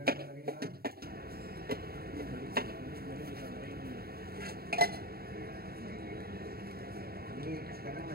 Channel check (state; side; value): late; left; 0.45 ms